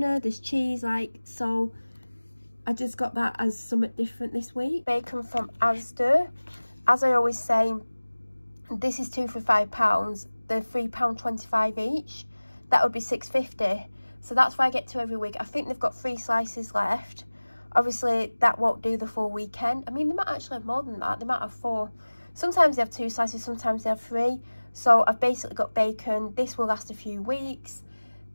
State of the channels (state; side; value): inverted; both; correlation -1.00